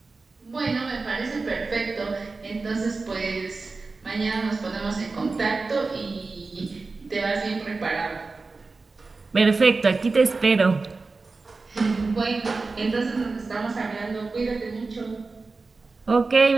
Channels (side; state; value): left; quieter; 3.9 dB